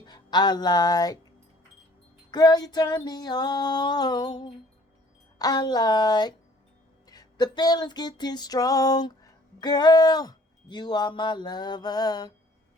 I like. Girl, you turn me on. I like. The feeling's getting strong. Girl, you are my lover.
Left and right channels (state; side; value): normal; both; correlation 0.56